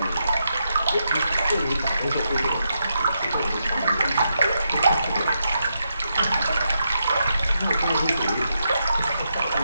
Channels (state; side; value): inverted; both; correlation -0.83